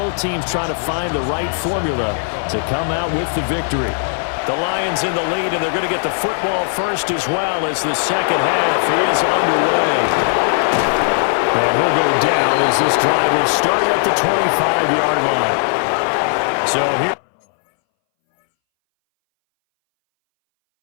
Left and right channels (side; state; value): right; silent; 63 dB below the other